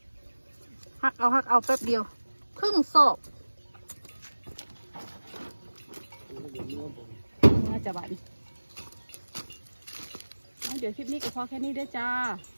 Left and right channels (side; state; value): both; inverted; correlation -1.00